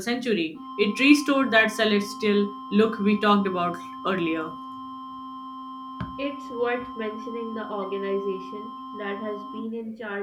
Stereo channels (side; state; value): both; identical; correlation 1.00